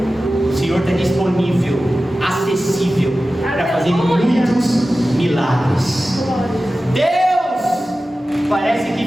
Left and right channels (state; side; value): normal; both; correlation 0.95